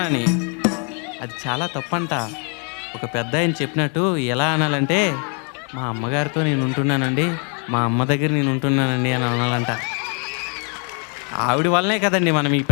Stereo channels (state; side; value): quieter; right; 38.7 dB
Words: అది చాలా తప్పంట. ఒక పెద్ద ఆయన చెప్పినట్టు ఎలా అనాలంటే మా అమ్మగారితో నేను ఉంటున్నానండి, మా అమ్మ దగ్గర నేను ఉంటున్నానండి అని అనాలంట. ఆవిడ వల్లనే కదండి మనం ఈ